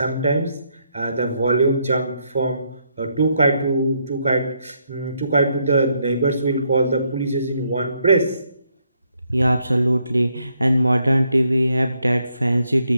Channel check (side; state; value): both; inverted; correlation -0.75